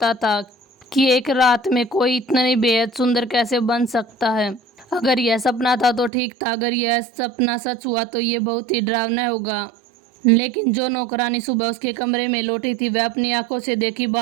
था कि एक रात में कोई इतनी बेहद सुंदर कैसे बन सकता है। अगर यह सपना था तो ठीक था, अगर यह सपना सच हुआ तो ये बहुत ही डरावना होगा। लेकिन जो नौकरानी सुबह उसके कमरे में लौटी थी वह अपनी आंखों से देखी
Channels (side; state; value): left; drops out; at 6.1 s